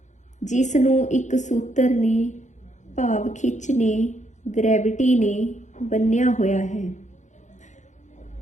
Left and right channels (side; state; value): right; late; 0.35 ms